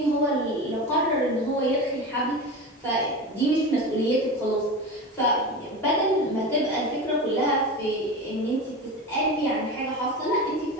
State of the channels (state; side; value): normal; both; correlation 0.27